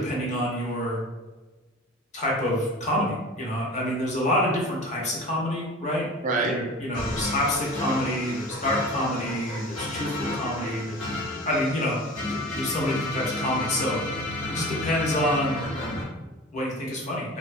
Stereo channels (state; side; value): normal; both; correlation 0.36